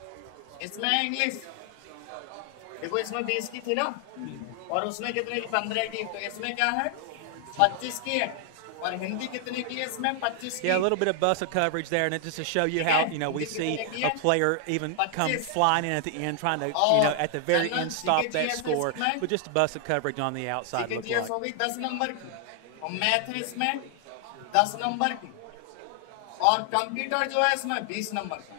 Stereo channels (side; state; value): both; different; correlation 0.00